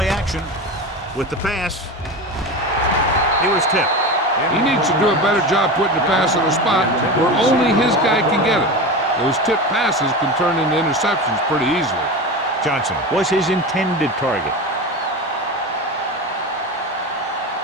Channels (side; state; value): both; normal; correlation 0.25